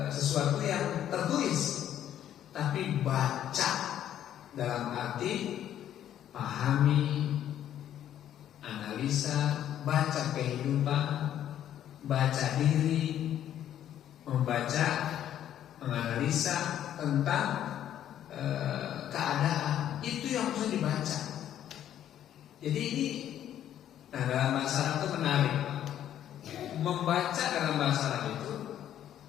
sesuatu yang tertulis, tapi baca dalam arti pahami, analisa, baca kehidupan, baca diri, membaca, menganalisa tentang keadaan. Itu yang harus dibaca. Jadi ini, nah dalam bahasa Arab itu menarik. Membaca dalam bahasa Arab itu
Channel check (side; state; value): right; quieter; 10.9 dB